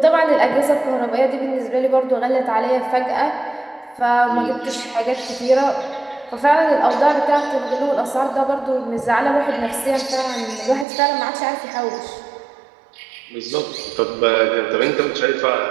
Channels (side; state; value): left; drops out; at 10.9 s